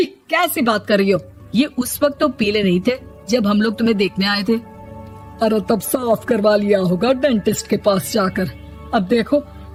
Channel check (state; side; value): identical; both; correlation 1.00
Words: कैसी बात कर रही हो? ये उस वक्त तो पीले नहीं थे जब हम लोग तुम्हें देखने आए थे। अरे तब साफ करवा लिया होगा डेंटिस्ट के पास जाकर। अब देखो